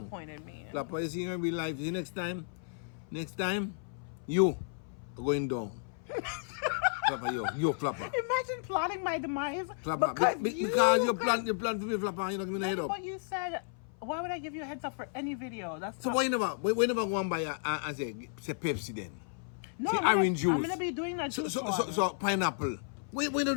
me. Flapper, you see in real life. See next time, you are going down. Flapper, you Flapper. Imagine plotting my demise. Flapper, because you plan for me, Flapper. You don't give me the head up. What you said. Why would I give you a heads up for any video? That's So why you never go and buy and say Pepsi then? no, say I'm orange gonna, juice. I'm gonna be doing that. So pineapple. Why don't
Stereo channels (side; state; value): right; silent; 56 dB below the other